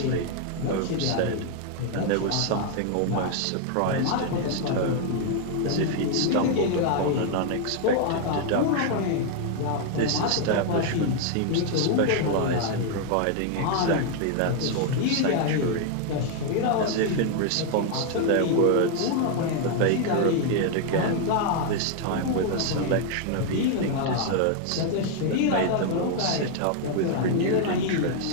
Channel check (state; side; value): different; both; correlation 0.00